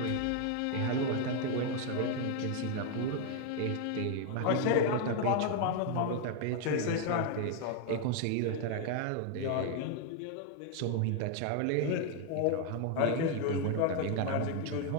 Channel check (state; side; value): different; both; correlation 0.00